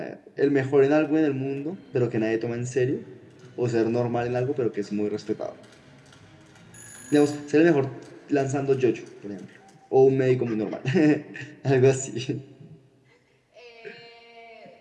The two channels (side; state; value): both; identical; correlation 1.00